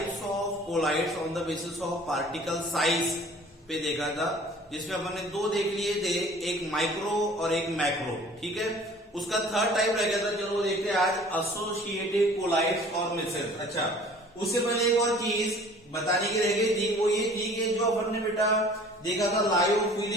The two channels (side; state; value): both; normal; correlation 0.49